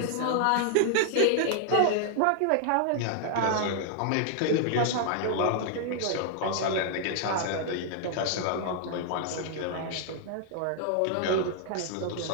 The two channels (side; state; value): both; different; correlation 0.00